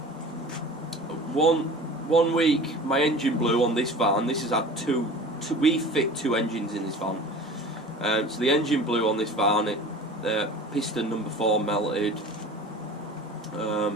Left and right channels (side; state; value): both; normal; correlation 0.40